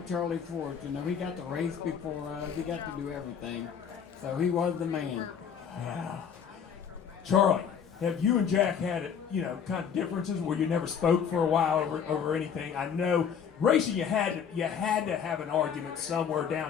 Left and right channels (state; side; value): quieter; right; 7.4 dB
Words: Charlie Swartz, you know. He got to race before us. He got to do everything. So he was the man. Yeah. Charlie, have you and Jack had, you know, kind of differences where you never spoke for a while over anything? I know racing you had to have an argument somewhere